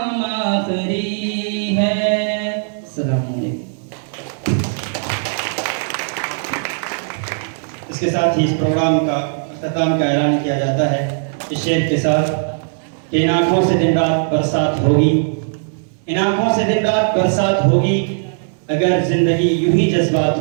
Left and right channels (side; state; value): left; silent; 62 dB below the other